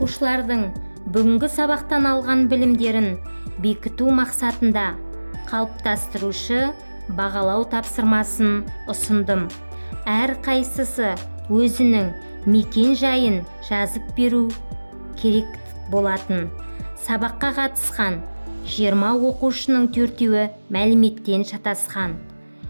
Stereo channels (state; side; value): inverted; both; correlation -1.00